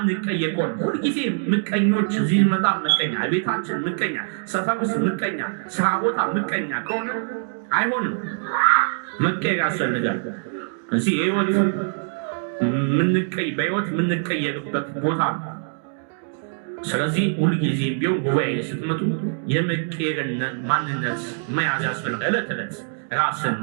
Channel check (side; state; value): left; silent; digital silence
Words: ከሆነ ሁልጊዜ ምቀኞች፣ እዚህ ስንመጣ ምቀኛ፣ ቤታችን ምቀኛ፣ ሰፈር ውስጥ ምቀኛ፣ ስራ ቦታ ምቀኛ ከሆነ አይሆንም። መቀየር ያስፈልጋል። እዚህ በህይወት የምንቀየርበት ቦታ ነው። ስለዚህ ሁልጊዜ ቢሆን ጉባኤ ስትመጡ የመቀየርን ማንነት መያዝ ያስፈልጋል። ዕለት ዕለት ራስን